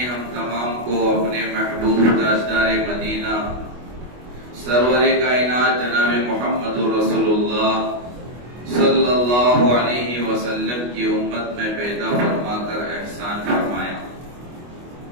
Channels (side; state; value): left; late; 25 ms